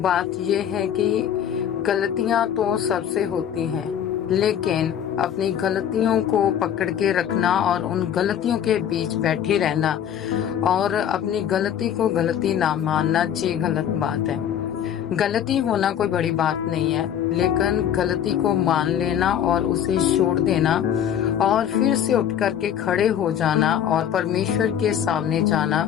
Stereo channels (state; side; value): quieter; right; 9.5 dB